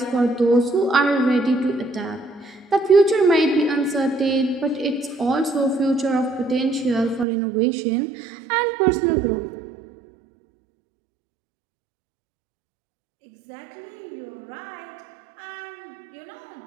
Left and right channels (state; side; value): drops out; left; at 7.2 s